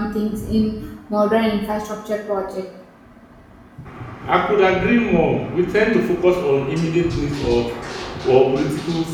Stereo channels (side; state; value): both; identical; correlation 1.00